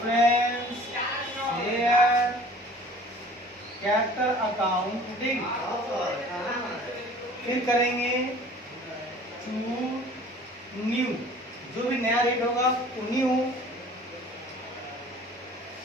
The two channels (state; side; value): normal; both; correlation 0.48